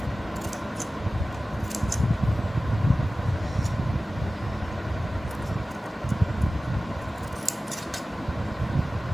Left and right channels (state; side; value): normal; both; correlation 0.96